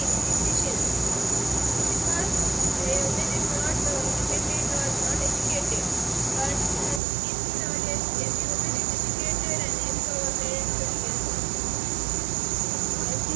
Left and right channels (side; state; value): left; drops out; at 7.0 s